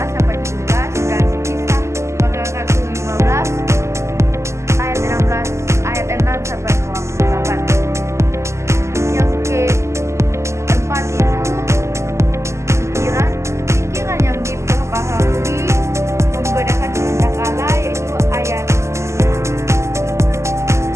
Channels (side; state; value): left; late; 0.13 ms